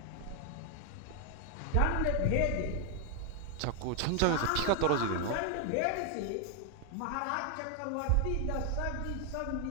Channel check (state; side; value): different; both; correlation 0.00